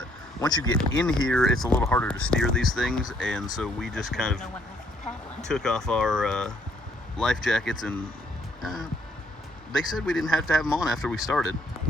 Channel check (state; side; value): normal; both; correlation 0.66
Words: once you get in here, it's a little harder to steer these things, and so we just kind of took off our life jackets, and they said we didn't have to have them on after we started.